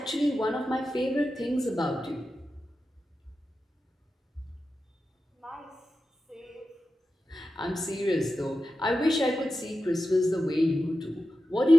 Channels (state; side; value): normal; both; correlation 0.92